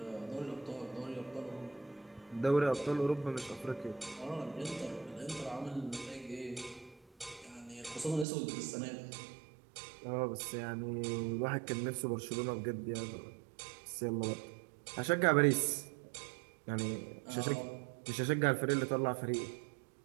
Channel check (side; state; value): left; drops out; at 8.2 s